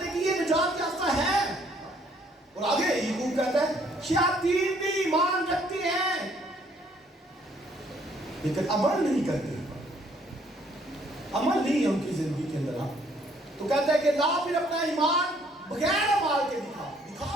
کہ یہ نجات یافتہ ہے. اور آگے یعقوب کہتا ہے شیاطین بھی ایمان رکھتی ہیں لیکن عمل نہیں کرتے. عمل نہیں ہے ان کی زندگی کے اندر. تو کہتا ہے کہ لا پھر اپنا ایمان بغیر اعمال کے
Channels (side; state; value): both; normal; correlation 0.64